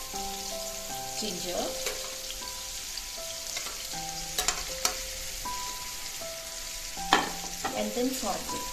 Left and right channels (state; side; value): identical; both; correlation 1.00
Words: ginger, and then saute